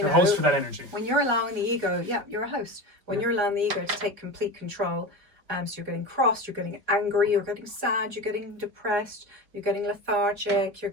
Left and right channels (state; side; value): late; left; 4.7 ms